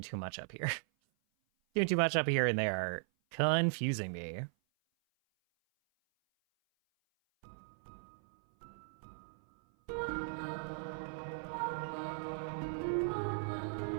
too much up here. Doing too much up here, and they are confusing me.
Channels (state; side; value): silent; left; 53 dB below the other